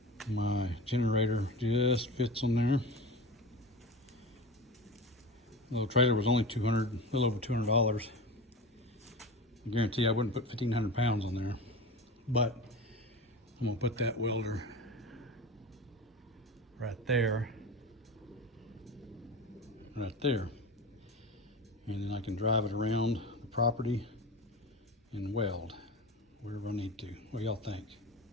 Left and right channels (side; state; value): both; normal; correlation 0.30